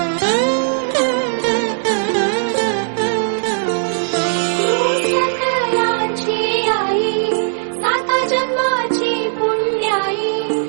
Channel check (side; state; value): left; silent; 60 dB below the other